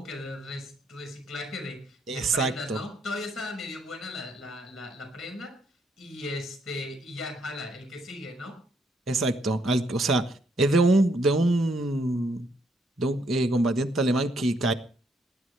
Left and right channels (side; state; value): both; normal; correlation 0.72